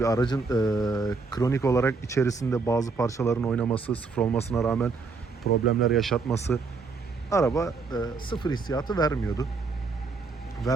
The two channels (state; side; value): quieter; left; 4.4 dB